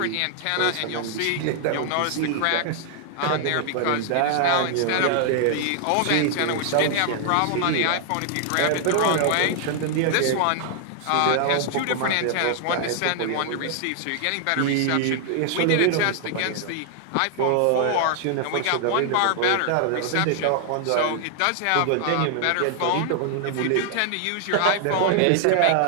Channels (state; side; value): different; both; correlation 0.00